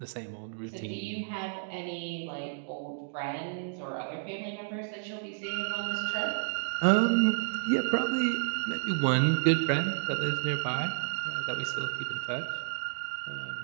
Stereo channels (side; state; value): left; silent; digital silence